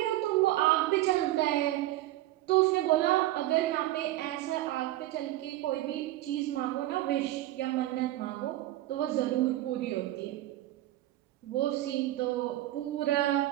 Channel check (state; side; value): quieter; left; 15.8 dB